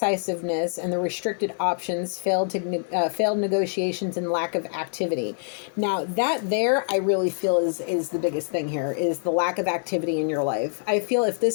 and the restricted options, failed negotiations, and lack of activity. Now, that there, I really feel is the biggest thing here, is the lack of activity in your life. I feel if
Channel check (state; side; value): silent; right; digital silence